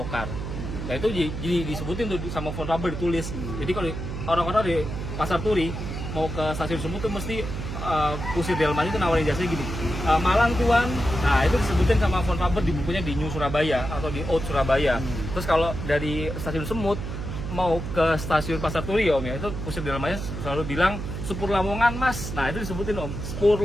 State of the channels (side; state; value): right; noise; hum, 6 dB below the sound